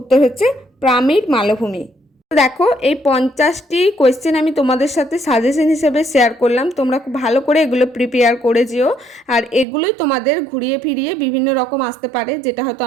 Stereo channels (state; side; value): drops out; left; at 9.7 s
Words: হচ্ছে পামির মালভূমি। দেখো এই 50টি কোয়েশ্চেন আমি তোমাদের সাথে সাজেশন হিসেবে শেয়ার করলাম, তোমরা খুব ভালো করে এগুলো প্রিপেয়ার করে যেও। আর এগুলোই তোমাদের ঘুরিয়ে ফিরিয়ে বিভিন্ন রকম আসতে পারে, যেটা হয়তো